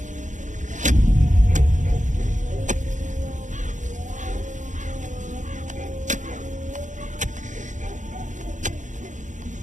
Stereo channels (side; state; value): left; late; 0.36 ms